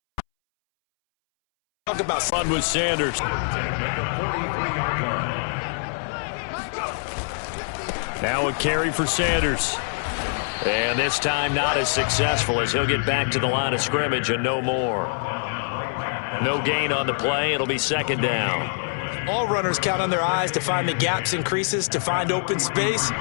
Talk about fun with Sanders. Now a carry for Sanders. And this time not as successful as he'll get back to the line of scrimmage and no more. No gain on the play. It'll be second down. All runners count on their eyes to find the gaps and creases, to find open space.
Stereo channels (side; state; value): right; silent; 62 dB below the other